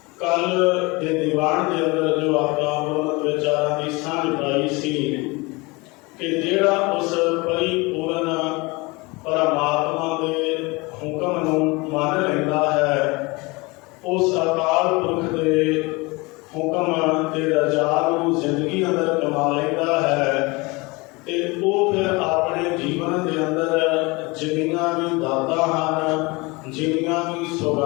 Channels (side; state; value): right; quieter; 25.2 dB